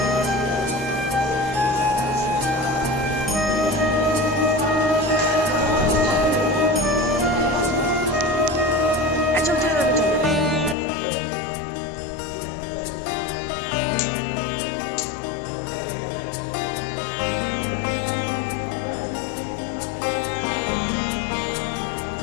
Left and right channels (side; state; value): right; drops out; at 10.8 s